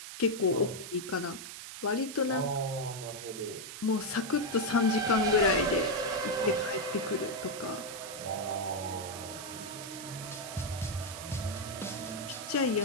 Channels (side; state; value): right; noise; hiss, 10 dB below the sound